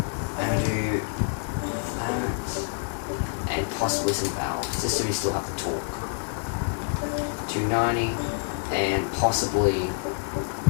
and I do that and possibly some valves just so we still have the torque. 290 and possibly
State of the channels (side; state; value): right; silent; 60 dB below the other